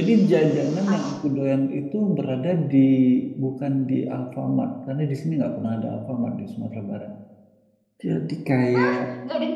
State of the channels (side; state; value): both; identical; correlation 1.00